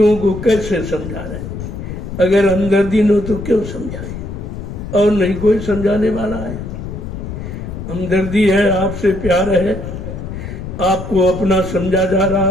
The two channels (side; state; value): left; noise; rumble, 8 dB below the sound